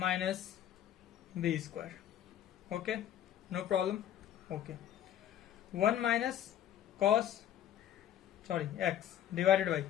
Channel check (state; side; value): quieter; right; 11.0 dB